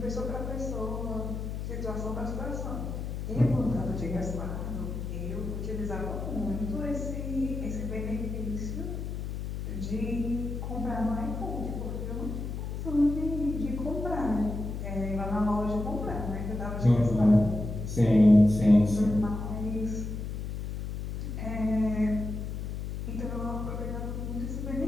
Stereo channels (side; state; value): left; noise; hum, 5 dB below the sound